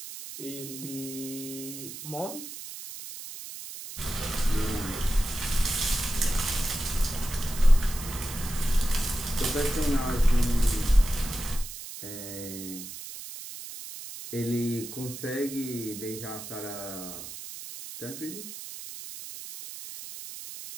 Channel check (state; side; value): noise; right; hiss, 11 dB below the sound